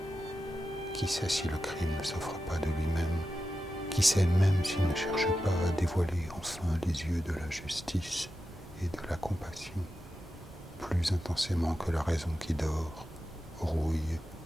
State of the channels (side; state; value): both; normal; correlation 0.91